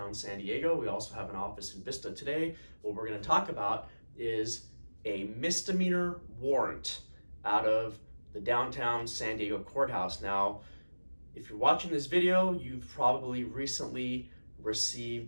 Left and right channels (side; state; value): both; inverted; correlation -1.00